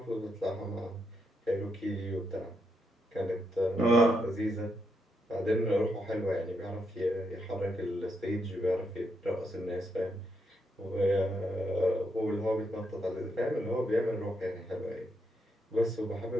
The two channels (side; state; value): both; normal; correlation 0.80